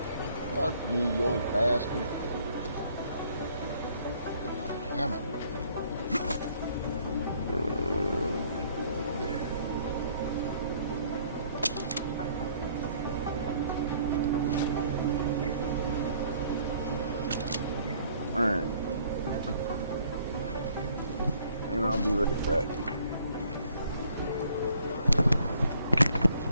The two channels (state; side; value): inverted; both; correlation -0.63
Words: Fuck you, you old bastard. Damn it. Alright. And I'll be right back.